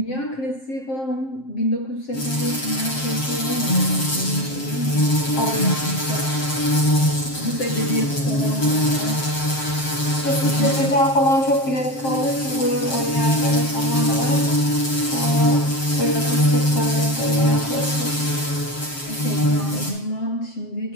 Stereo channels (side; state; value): right; late; 7.6 ms